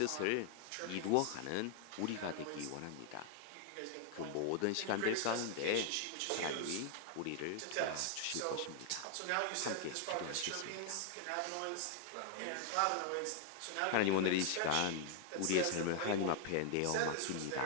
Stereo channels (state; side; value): different; both; correlation 0.00